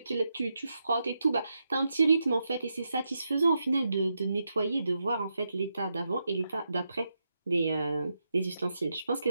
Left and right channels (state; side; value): inverted; both; correlation -0.86